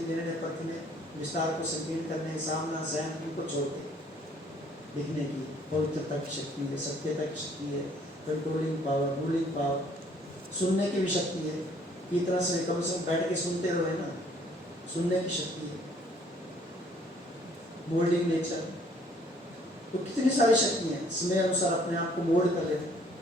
परखने, विस्तार को संकीर्ण करने, सामना सहन, इनको छोड़ के लिखने की पवित्रता की शक्ति है, सत्यता की शक्ति है, कंट्रोलिंग पावर, रूलिंग पावर, सुनने की भी शक्ति है। इतना से कम से कम बैठ के सुनते रहो ना, सुनने की शक्ति है, मोल्डिंग नेचर। तो कितनी सारी शक्ति है, समय अनुसार अपने आप को मोल्ड कर लेते।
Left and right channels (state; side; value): normal; both; correlation 0.60